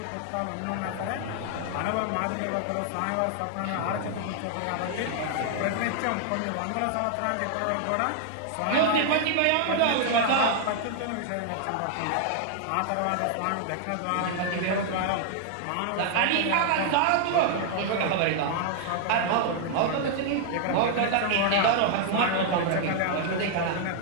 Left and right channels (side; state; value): both; different; correlation 0.00